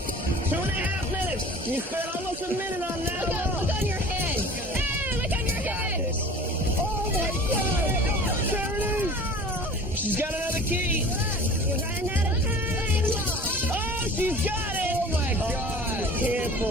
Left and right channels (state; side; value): normal; both; correlation 0.43